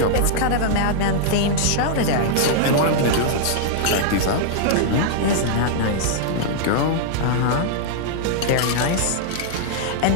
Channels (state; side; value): different; both; correlation -0.01